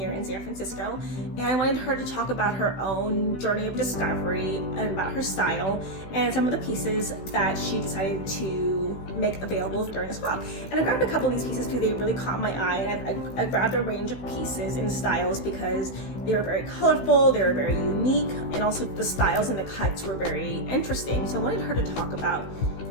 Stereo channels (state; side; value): late; right; 16 ms